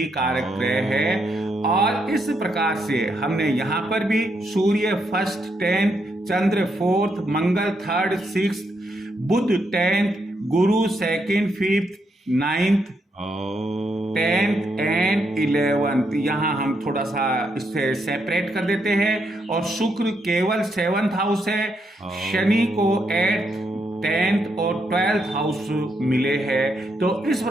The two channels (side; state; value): both; normal; correlation 0.78